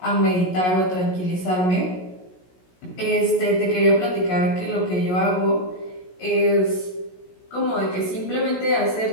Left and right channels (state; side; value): late; right; 16 ms